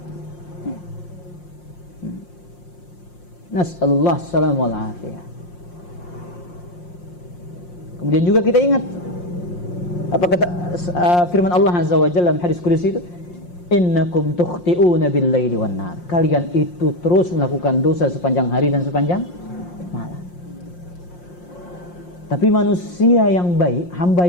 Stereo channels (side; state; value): right; late; 5.6 ms